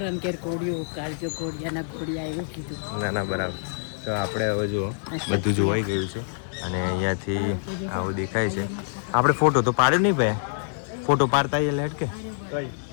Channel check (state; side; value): silent; right; 55 dB below the other